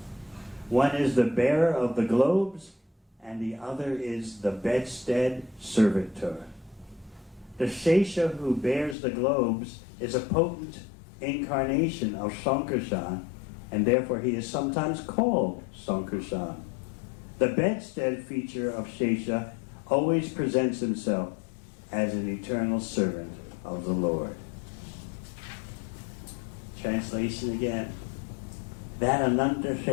One is the bearer of the globes, and the other is the bedstead servitor. The Shesha who bears the globes is a potent incarnation of Sankarshan, and therefore he is sometimes called Sankarshan. The bedstead feature of Shesha always presents himself as an eternal servant of the Lord. Translation again. That Ananta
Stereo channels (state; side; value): drops out; right; at 9.0 s